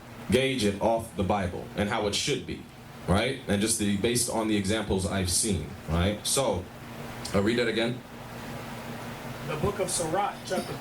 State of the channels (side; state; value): both; identical; correlation 1.00